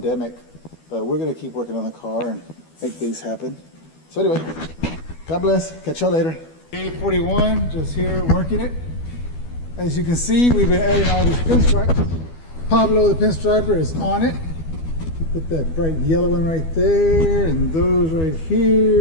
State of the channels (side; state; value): right; late; 12 ms